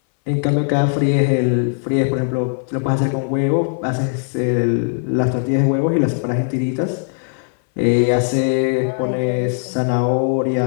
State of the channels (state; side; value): silent; right; 60 dB below the other